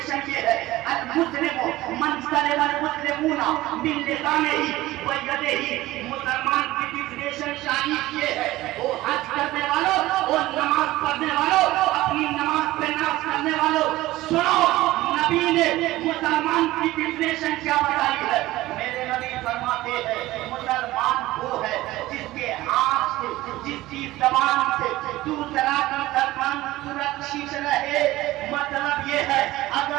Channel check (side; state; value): left; quieter; 17.2 dB